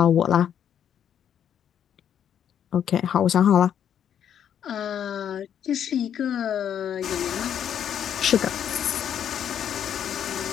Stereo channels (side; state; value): right; quieter; 9.2 dB